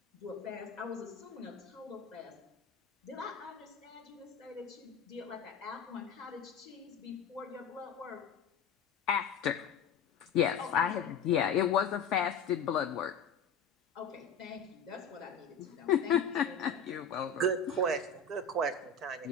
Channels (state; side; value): quieter; right; 5.3 dB